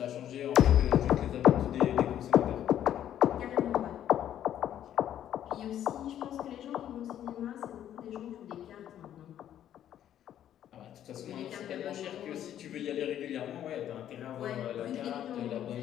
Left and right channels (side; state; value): right; quieter; 10.9 dB